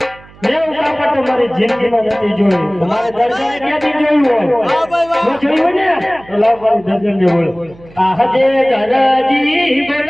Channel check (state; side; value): noise; right; hum, 24 dB below the sound